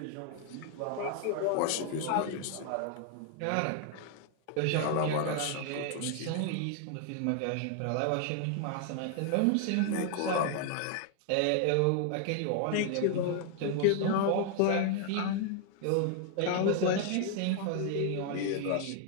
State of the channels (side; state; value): both; different; correlation 0.00